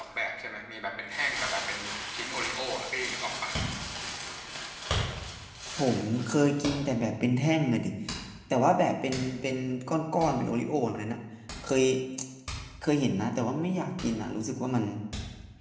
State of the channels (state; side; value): identical; both; correlation 1.00